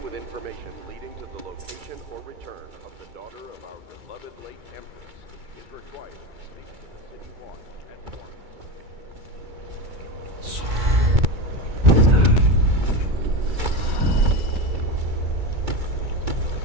with information leading to the location or return of the daughter of our beloved late Empress is required to speak to the city watch at once.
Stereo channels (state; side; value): late; left; 2.3 ms